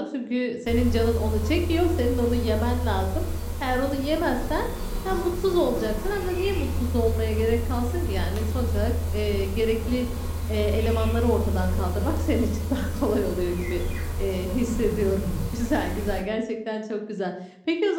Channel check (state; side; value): identical; both; correlation 1.00